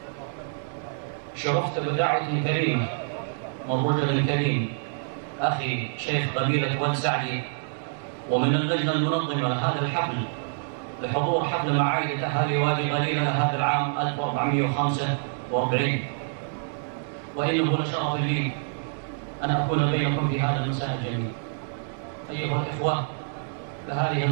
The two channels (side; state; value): left; silent; 60 dB below the other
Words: شرفت بدعوة كريمة من رجل كريم أخي شيخ قبيلة واد سعدي ومن اللجنة المنظمة لهذا الحفل لحضور حفل معايدة أهالي وادي غليلة هذا العام 1445. وإنه لشرف لي أن أكون بينكم في هذا المساء الجميل. أيها الإخوة، لهذه